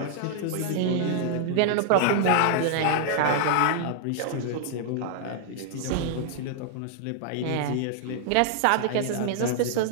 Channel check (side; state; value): both; different; correlation 0.00